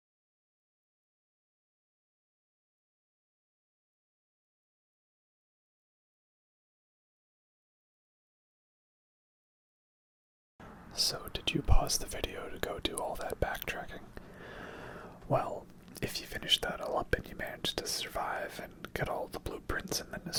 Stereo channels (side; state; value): both; identical; correlation 1.00